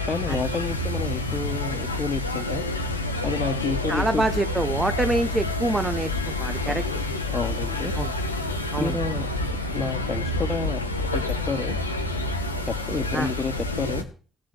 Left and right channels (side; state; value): both; normal; correlation 0.37